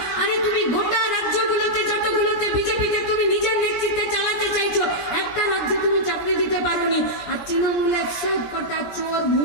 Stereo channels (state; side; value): late; right; 17 ms